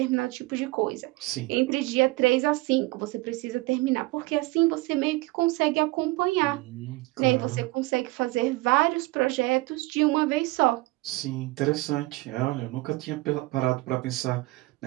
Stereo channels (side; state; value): left; quieter; 21.9 dB